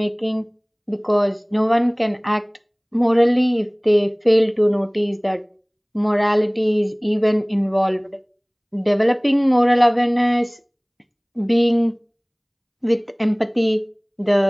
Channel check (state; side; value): identical; both; correlation 1.00